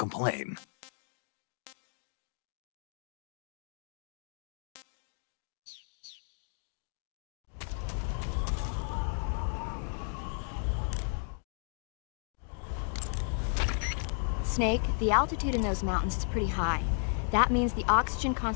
Snake, the altitude in those mountains is pretty high. That means the oxygen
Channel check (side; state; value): right; silent; 55 dB below the other